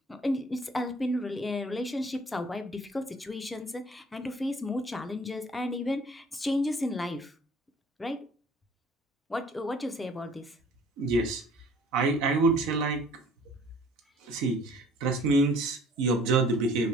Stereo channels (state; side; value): normal; both; correlation 0.53